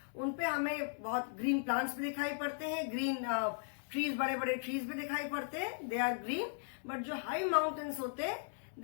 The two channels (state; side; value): silent; right; digital silence